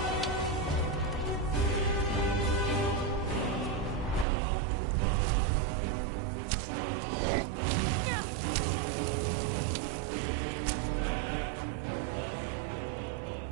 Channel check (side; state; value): left; drops out; at 4.2 s